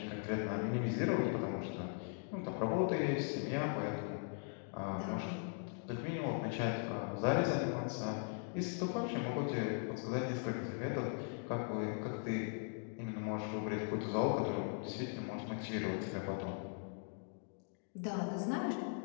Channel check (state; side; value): silent; right; 51 dB below the other